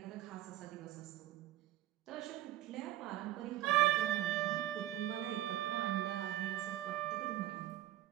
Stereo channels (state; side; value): quieter; left; 14.2 dB